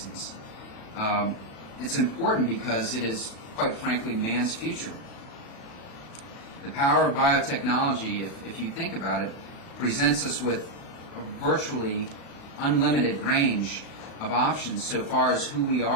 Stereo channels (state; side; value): late; right; 36 ms